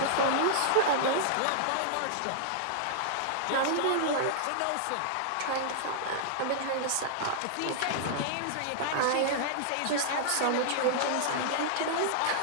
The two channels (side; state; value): both; different; correlation -0.01